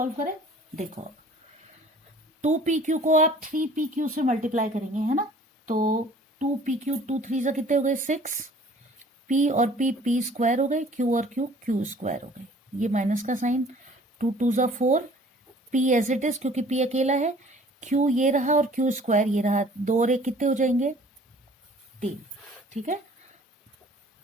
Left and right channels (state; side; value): normal; both; correlation 0.51